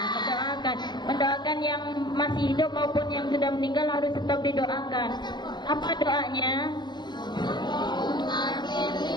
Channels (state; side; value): late; right; 0.21 ms